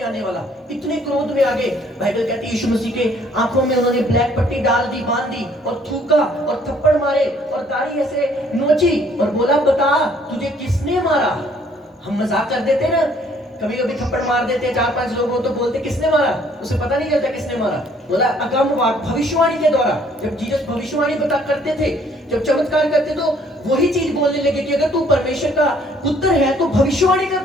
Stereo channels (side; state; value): both; normal; correlation 0.62